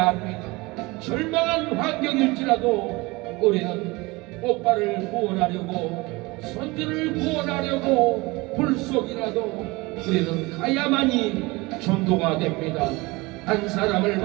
합니다. 절망한 환경일지라도 우리는 오빠를 구원하려고 선주를 구원하려고 불속이라도 우리는 가야만이 전도가 됩니다. 한 사람을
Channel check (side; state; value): left; quieter; 23.3 dB